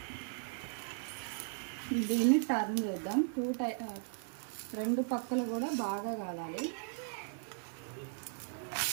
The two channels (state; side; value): silent; left; digital silence